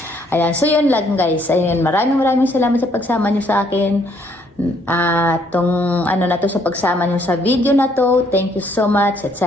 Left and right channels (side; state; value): both; normal; correlation 0.67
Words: Ayan, so yun lang guys. Ayan, maraming salamat sa pagsama nyo sa akin. Tong na to sa pagsama nyo sa video na to. Thank you so much at